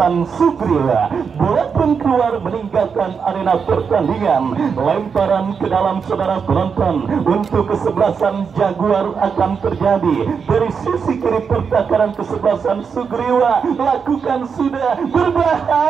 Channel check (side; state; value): left; quieter; 6.1 dB